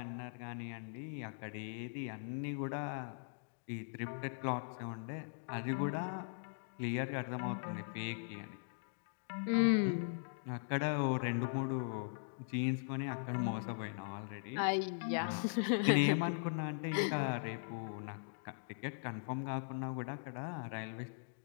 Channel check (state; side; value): silent; right; digital silence